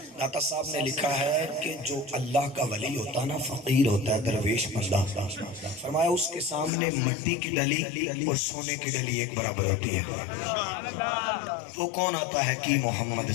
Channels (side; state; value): right; drops out; at 6.7 s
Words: داتا صاحب نے لکھا ہے کہ جو اللہ کا ولی ہوتا ہے نا، فقیر ہوتا ہے، درویش بندہ، فرمایا اس کے سامنے مٹی کی ڈلی اور سونے کی ڈلی ایک برابر ہوتی ہے۔ وہ کون آتا ہے کہ محمد